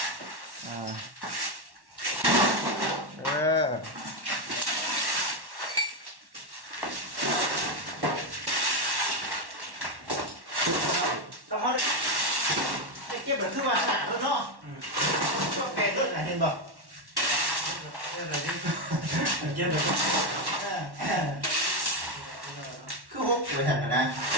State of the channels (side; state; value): left; late; 1.1 ms